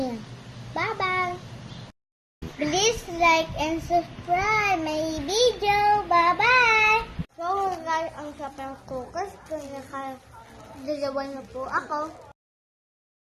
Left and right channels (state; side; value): identical; both; correlation 1.00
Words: Bye-bye! Please like and subscribe my video. Bye-bye! So guys, ang sapang focus kung nakadalawa na po ako.